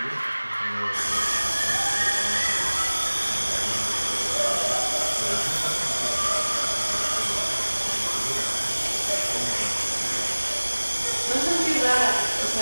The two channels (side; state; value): both; inverted; correlation -1.00